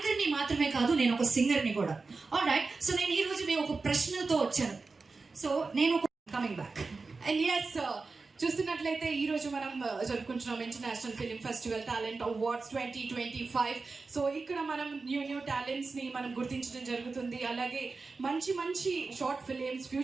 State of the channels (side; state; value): left; quieter; 4.1 dB